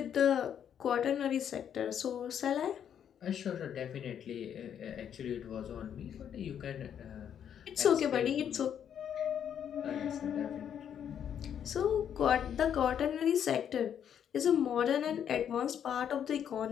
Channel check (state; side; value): quieter; right; 8.9 dB